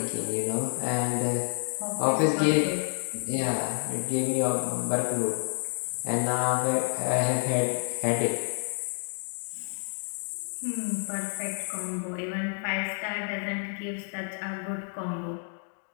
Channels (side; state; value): right; silent; 58 dB below the other